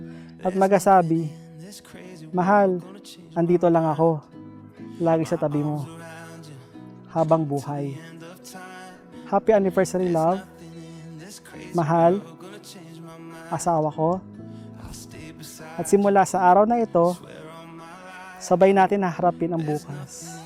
At magasabi, mahal, andito lang ako. Lagi sa tabi mo. Habang buhay. Happy anniversary, love. Mahal, asawa ko. At simula sa araw na ito, sabay natin haharapin ang bukas.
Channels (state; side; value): identical; both; correlation 1.00